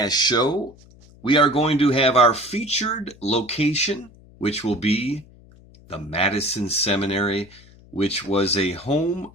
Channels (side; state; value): left; noise; hum, 25 dB below the sound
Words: show, we are going to have our featured location, which will be the Madison Seminary, which was a home